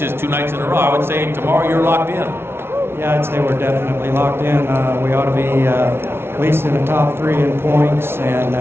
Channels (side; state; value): left; late; 0.12 ms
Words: 2 nights in a row. I would say tomorrow you're locked in. Yeah, I'd say we're definitely locked in. We ought to be at least in the top 3 in points. And